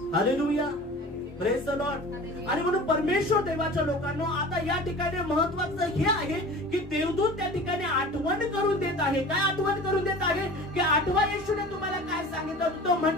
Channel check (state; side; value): normal; both; correlation 0.39